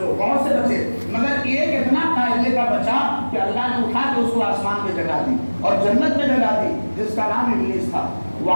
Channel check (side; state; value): both; inverted; correlation -1.00